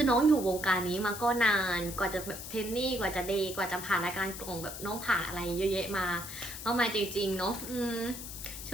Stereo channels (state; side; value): noise; left; hiss, 10 dB below the sound